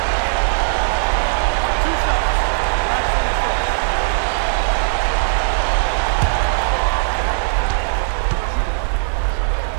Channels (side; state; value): left; silent; digital silence